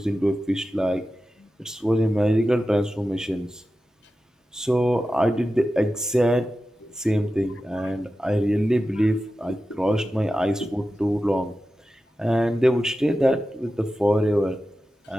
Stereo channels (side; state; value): both; normal; correlation 0.93